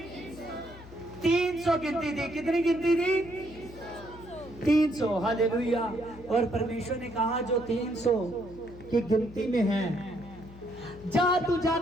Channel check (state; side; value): noise; left; hum, 18 dB below the sound